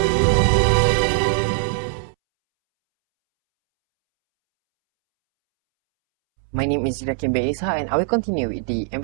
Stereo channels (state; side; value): silent; left; 65 dB below the other